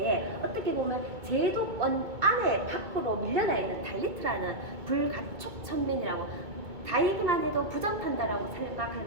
어떻게 보면 제도권 안에 밖으로 밀려나 있는 달리트라는 불가촉 천민이라고, 다이기만 해도 부정한다라고 생각할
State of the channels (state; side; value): late; left; 2.2 ms